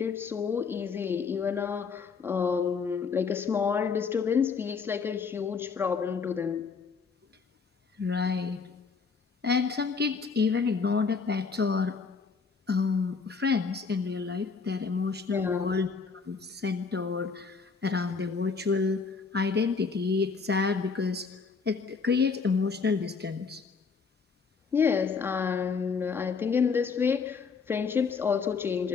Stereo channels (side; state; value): right; quieter; 5.2 dB